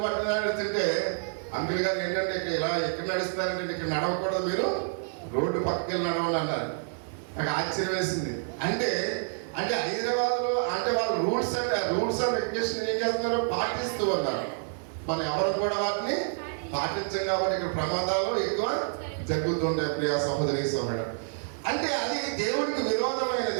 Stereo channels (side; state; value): left; silent; digital silence